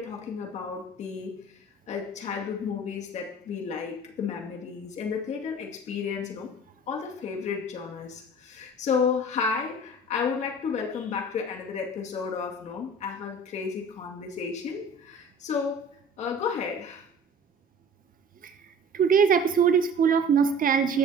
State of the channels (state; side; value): normal; both; correlation 0.43